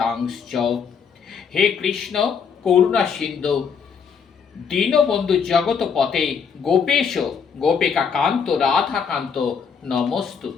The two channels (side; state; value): right; quieter; 6.4 dB